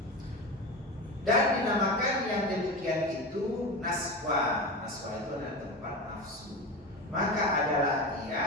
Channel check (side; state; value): both; normal; correlation 0.24